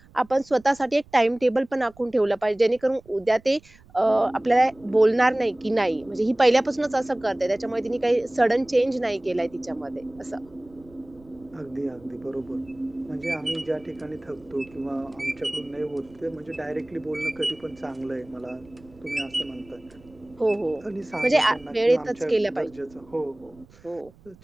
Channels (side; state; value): right; noise; rumble, 26 dB below the sound